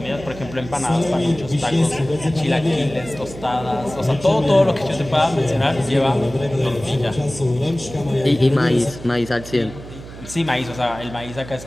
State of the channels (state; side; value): noise; right; hum, 15 dB below the sound